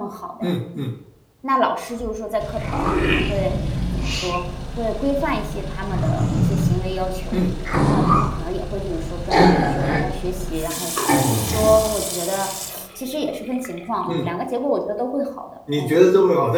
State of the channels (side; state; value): both; identical; correlation 1.00